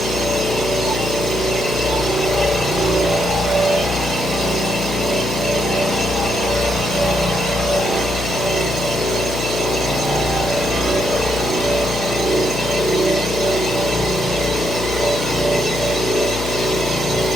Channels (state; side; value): noise; left; hum, 6 dB below the sound